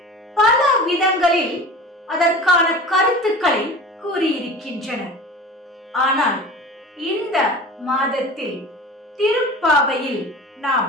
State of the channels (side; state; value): both; normal; correlation 0.37